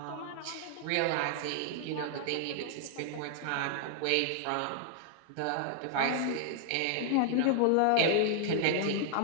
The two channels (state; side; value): different; both; correlation 0.00